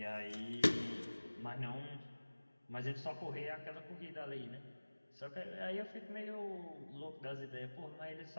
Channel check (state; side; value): inverted; both; correlation -1.00